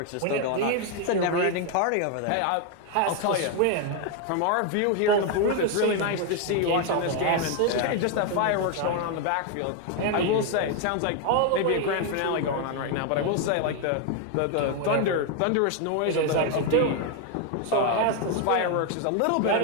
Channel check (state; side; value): different; both; correlation 0.01